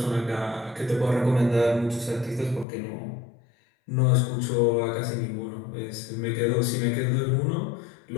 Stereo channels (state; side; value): drops out; right; at 2.7 s